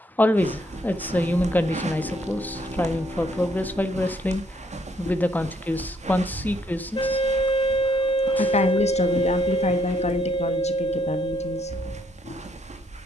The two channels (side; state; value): both; normal; correlation 0.70